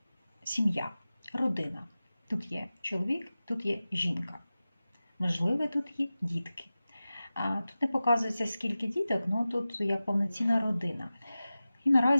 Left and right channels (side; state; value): both; inverted; correlation -0.95